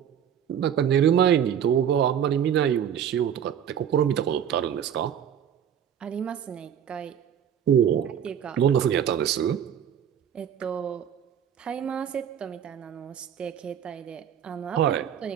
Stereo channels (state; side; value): quieter; left; 9.0 dB